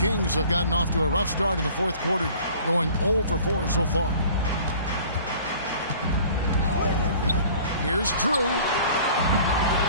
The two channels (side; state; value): both; inverted; correlation -0.48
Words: have gotten off to a rough start in the fourth quarter, going 0 for 4 so far. Here's Drew.